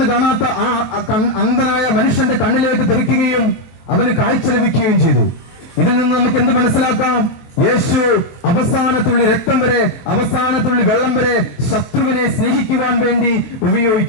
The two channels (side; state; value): right; late; 23 ms